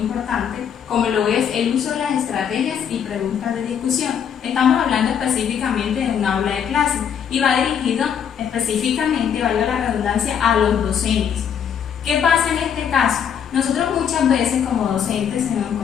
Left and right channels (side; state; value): right; quieter; 8.1 dB